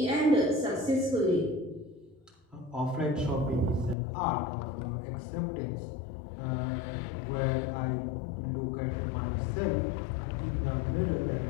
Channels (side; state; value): right; drops out; at 4.0 s